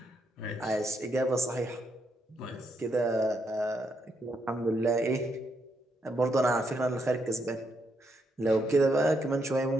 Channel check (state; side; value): normal; both; correlation 0.78